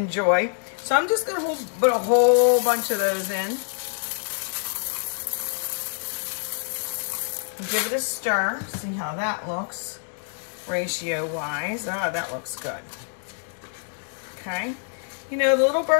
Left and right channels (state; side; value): silent; right; 58 dB below the other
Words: So I'm just going to put a whole bunch of those in. Give it a stir. See how that looks ratio-wise. Ah, that looks good. Okay. You know, the little